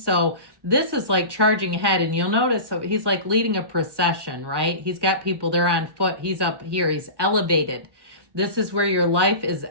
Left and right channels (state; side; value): late; left; 1.1 ms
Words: this is like charging ahead, and you'll notice so he's like leading a procession, right? He's got people, they're on foot. He's up here. He's elevated. This is where your life is